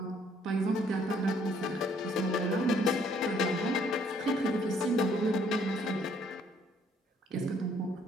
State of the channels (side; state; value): both; normal; correlation 0.64